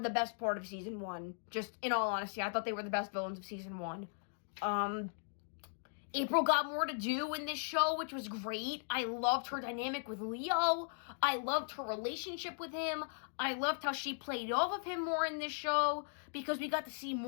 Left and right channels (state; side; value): silent; right; digital silence